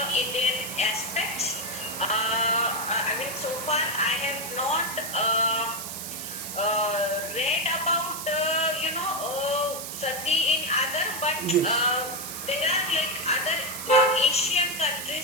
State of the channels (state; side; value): noise; right; hiss, 7 dB below the sound